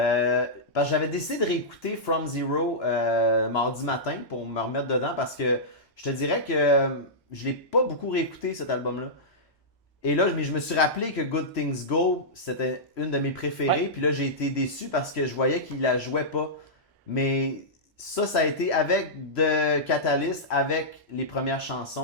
que j'avais décidé de réécouter From Zero mardi matin pour me remettre dedans parce que je te dirais que je l'ai pas beaucoup réécouté cet album-là. Et là, je me suis rappelé que Good Things Go, c'était une de mes préférées. Ouais. Puis là, j'ai été déçu parce que je voyais qu'il la jouait pas. Mais ça a été avec The Catalyst, avec les premières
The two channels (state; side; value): late; right; 1.2 ms